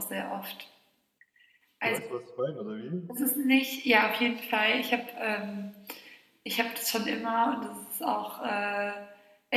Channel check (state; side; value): identical; both; correlation 1.00